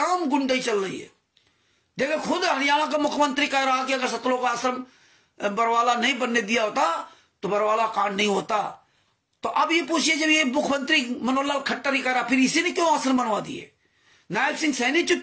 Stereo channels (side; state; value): both; identical; correlation 1.00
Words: गुंडाई चल रही है। देखो खुद हरियाणा का मुख्यमंत्री कह रहा कि अगर सतलोक आश्रम बरवाला नहीं बनने दिया होता तो बरवाला कांड नहीं होता। तो अब ये पूछिए, जब ये मुख्यमंत्री मनोहर लाल खट्टर ही कह रहा, फिर इसी ने क्यों आश्रम बनवा दिए? नायब सिंह सैनी